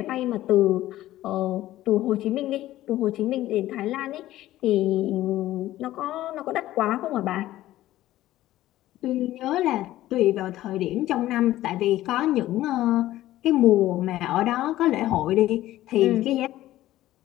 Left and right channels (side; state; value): right; quieter; 14.9 dB